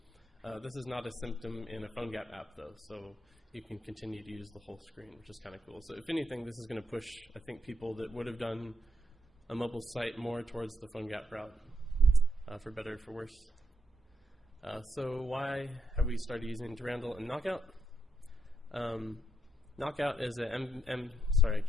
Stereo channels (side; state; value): both; normal; correlation 0.79